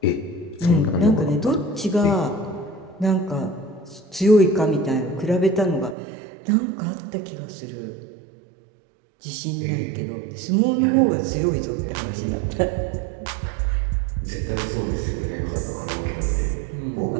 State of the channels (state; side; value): drops out; left; at 6.0 s